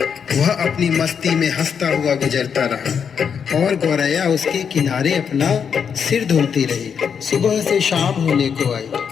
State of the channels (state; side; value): quieter; right; 7.0 dB